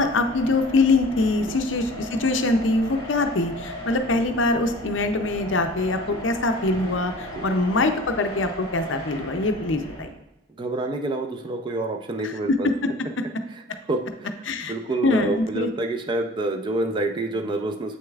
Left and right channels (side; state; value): both; normal; correlation 0.43